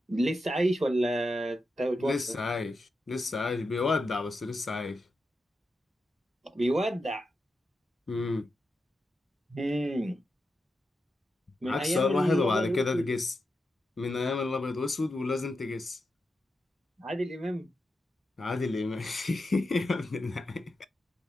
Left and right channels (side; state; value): both; normal; correlation 0.88